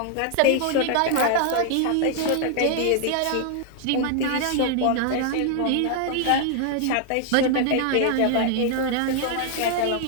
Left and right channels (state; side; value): different; both; correlation 0.00